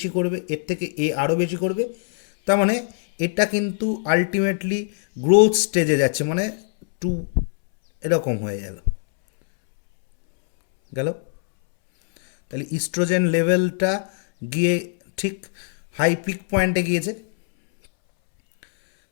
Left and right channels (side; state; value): right; silent; 64 dB below the other